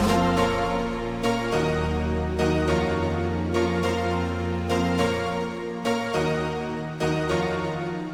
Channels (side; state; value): both; identical; correlation 1.00